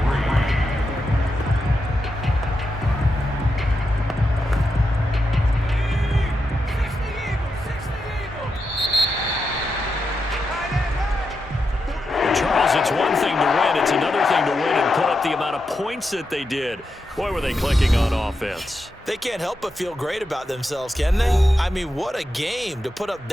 It's one thing to win. It's another thing to win and put up the amount of points that they did. Boy, were they clicking on offense. They can't help but feel great about themselves, can they? I mean, what a game to put up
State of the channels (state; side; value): normal; both; correlation 0.87